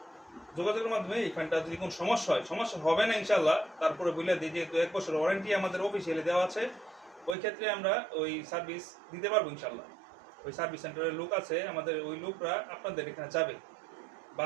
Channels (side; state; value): left; drops out; at 7.4 s